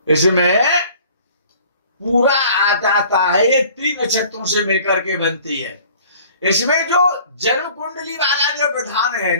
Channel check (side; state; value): both; inverted; correlation -0.50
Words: इसमें पूरा आ जाता है, ये 3 नक्षत्रों से मिलकर के बनती है। इसमें जो जन्म कुंडली वाला जो विधान है